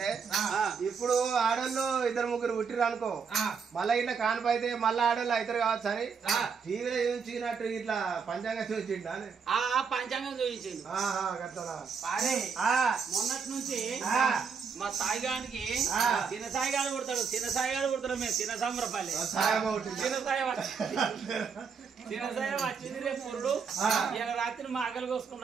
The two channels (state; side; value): quieter; left; 5.9 dB